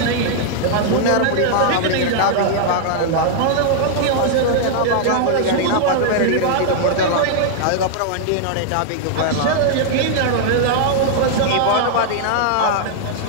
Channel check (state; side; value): different; both; correlation -0.01